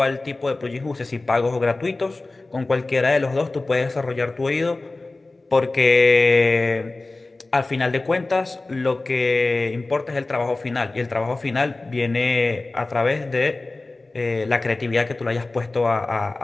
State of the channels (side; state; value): right; quieter; 3.2 dB